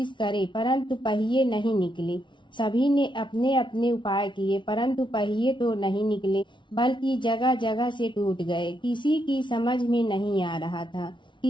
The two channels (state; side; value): late; right; 0.24 ms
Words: करे परंतु पहिए नहीं निकले। सभी ने अपने अपने उपाय किए परंतु पहिए तो नहीं निकले, बल्कि जगह जगह से टूट गए। किसी की समझ में नहीं आ रहा था